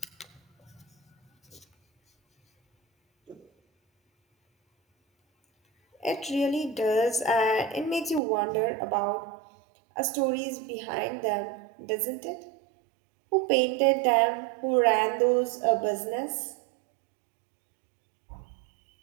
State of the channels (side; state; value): left; drops out; at 8.2 s